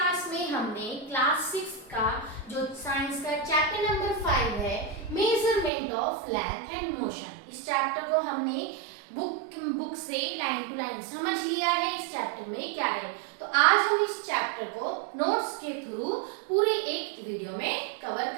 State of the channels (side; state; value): left; drops out; at 5.7 s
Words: में हमने क्लास 6 का जो साइंस का चैप्टर नंबर 5 है, measurement of length and motion, इस चैप्टर को हमने बुक से लाइन टू लाइन समझ लिया है। इस चैप्टर में क्या है, तो आज हम इस चैप्टर को नोट्स के थ्रू पूरे एक वीडियो में कवर